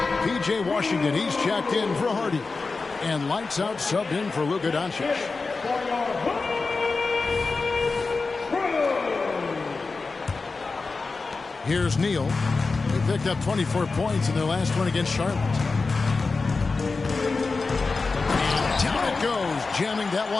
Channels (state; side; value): quieter; right; 4.1 dB